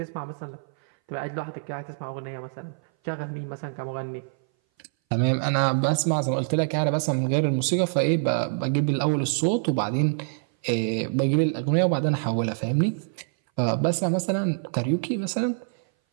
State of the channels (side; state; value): left; silent; 59 dB below the other